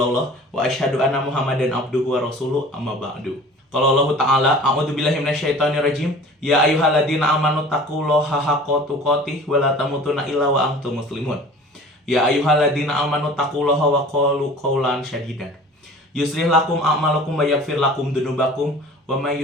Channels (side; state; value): both; normal; correlation 0.44